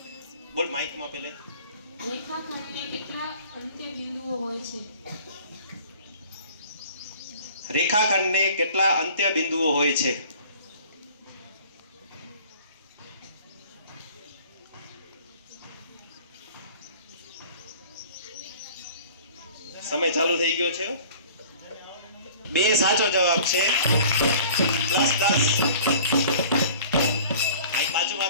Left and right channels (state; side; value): inverted; both; correlation -0.48